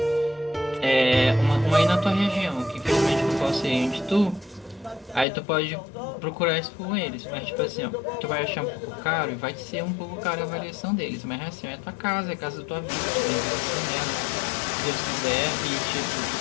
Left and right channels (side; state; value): right; drops out; at 5.2 s